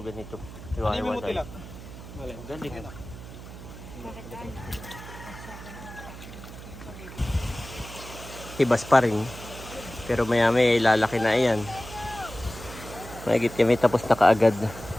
Hiwa-hiwalay. Galing. Hibas pa rin. Pero maya may lalaki na yan. Mahigit kami tapos na kaagad.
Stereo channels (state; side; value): noise; right; hum, 14 dB below the sound